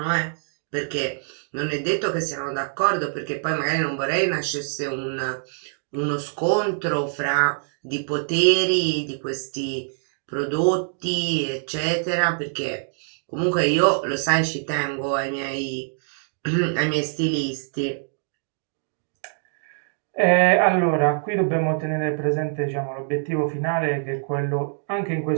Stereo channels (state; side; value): silent; left; digital silence